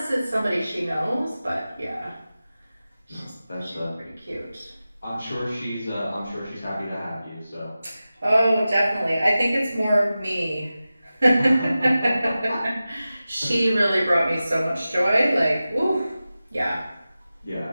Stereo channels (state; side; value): inverted; both; correlation -0.95